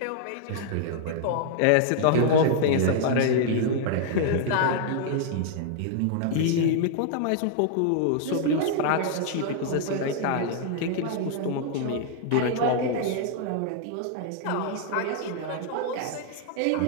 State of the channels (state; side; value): different; both; correlation -0.01